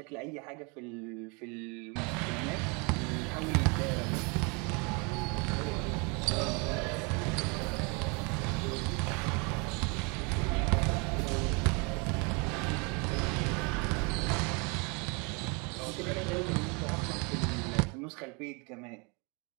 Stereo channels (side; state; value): left; quieter; 31.5 dB